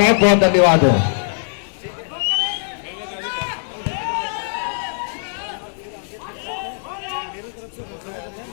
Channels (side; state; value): right; silent; digital silence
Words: बहुत धन्यवाद है।